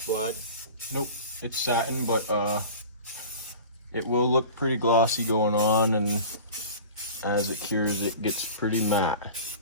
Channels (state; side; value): inverted; both; correlation -0.38